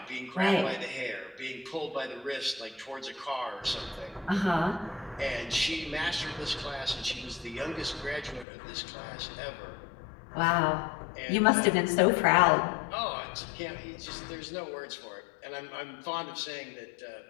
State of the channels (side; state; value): right; drops out; at 8.5 s